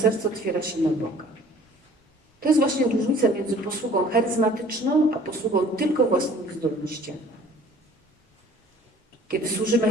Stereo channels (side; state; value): both; normal; correlation 0.51